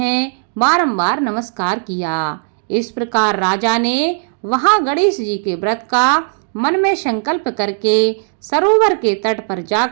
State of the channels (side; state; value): left; silent; digital silence